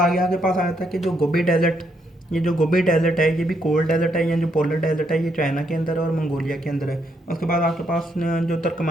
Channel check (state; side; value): normal; both; correlation 0.75